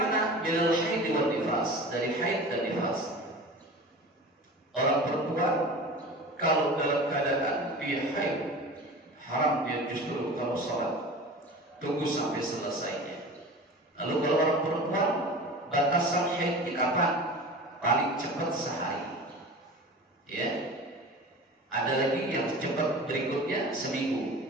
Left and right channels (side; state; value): both; normal; correlation 0.35